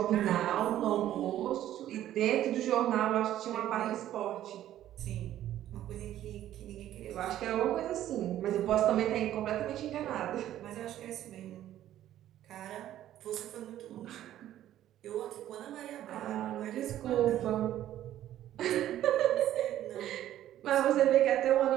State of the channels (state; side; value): quieter; left; 12.5 dB